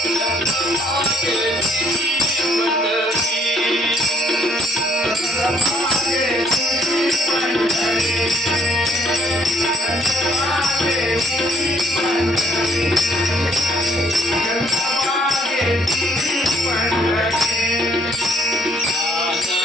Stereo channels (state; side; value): normal; both; correlation 0.64